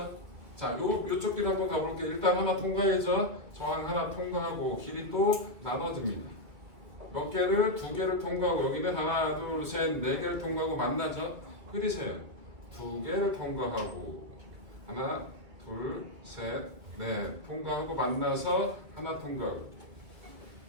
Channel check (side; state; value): left; late; 2.4 ms